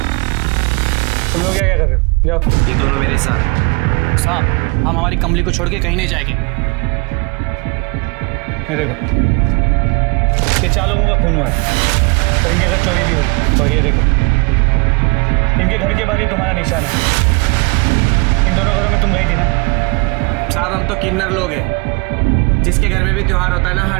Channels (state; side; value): quieter; left; 31.6 dB